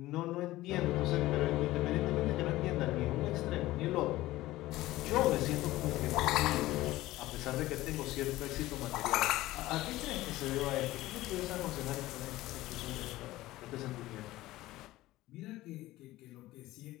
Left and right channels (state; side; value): quieter; right; 17.0 dB